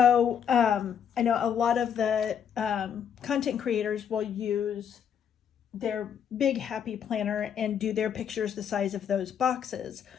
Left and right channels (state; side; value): quieter; right; 8.2 dB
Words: I know a lot of the content creators will use their big happy planner and do their pictures the size of those boxes.